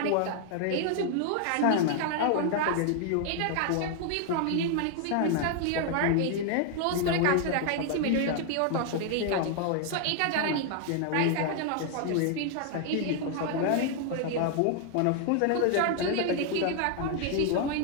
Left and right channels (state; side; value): different; both; correlation 0.00